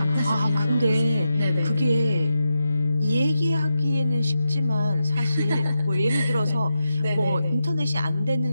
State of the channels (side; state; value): both; inverted; correlation -0.88